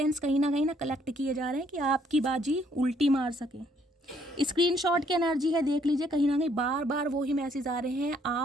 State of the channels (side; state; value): both; normal; correlation 0.67